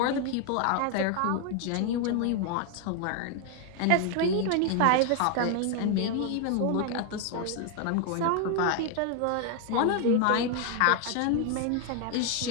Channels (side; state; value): both; different; correlation 0.01